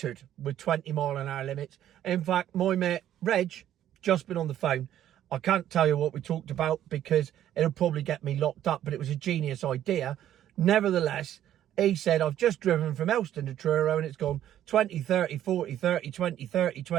with 20-mile-an-hour limits. In fact, my mate Reg, just been on the phone. I can't tell you what we talked about because it'll probably get me locked up, but it was a genius idea. Nevertheless, he said, I've just driven from Elston to Truro and it's gone 20, 30, 40, 30, 20, 30,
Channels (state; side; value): quieter; left; 11.5 dB